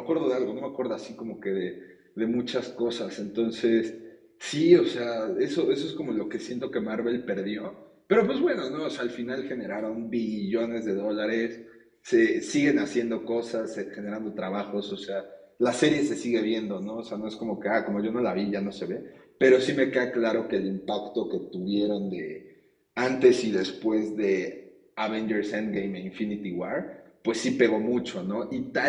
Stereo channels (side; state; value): both; identical; correlation 1.00